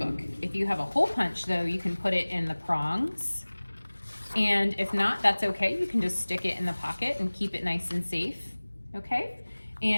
If you have a hole punch though, you can put it in the prongs. And if not, that's okay. You can just stick it in the pocket and keep it nice and safe, okay?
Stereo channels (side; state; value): both; inverted; correlation -1.00